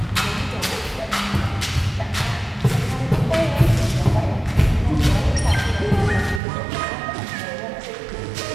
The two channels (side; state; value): left; drops out; at 6.4 s